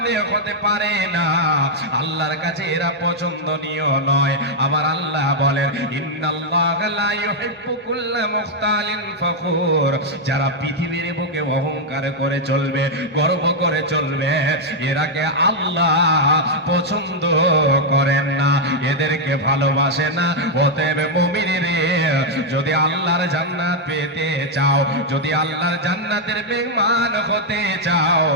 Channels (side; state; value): both; normal; correlation -0.02